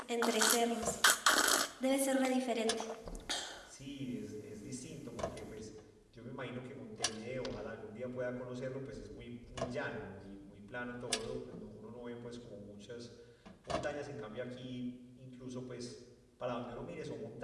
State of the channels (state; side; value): identical; both; correlation 1.00